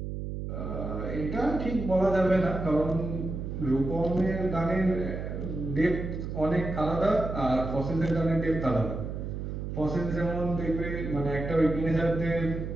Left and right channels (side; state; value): right; noise; hum, 5 dB below the sound